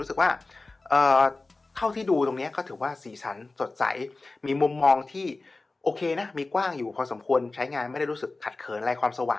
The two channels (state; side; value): quieter; right; 3.4 dB